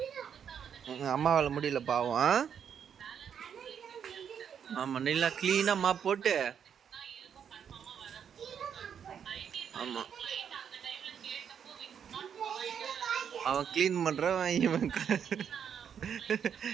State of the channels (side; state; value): left; quieter; 8.0 dB